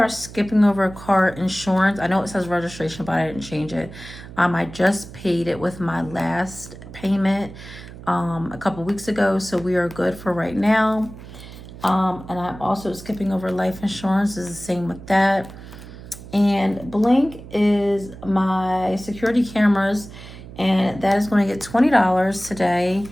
skipping over car insurance. I know it says registration, but I didn't change it. I just paid it with my last payment a couple weeks ago, so we are good for right now. And I'm also skipping over life insurance. Is the same with that. And Blink is my security cameras, and that is going to get $20 today.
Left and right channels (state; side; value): noise; right; hum, 15 dB below the sound